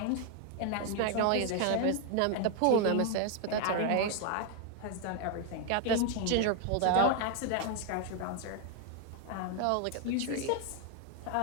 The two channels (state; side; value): different; both; correlation 0.00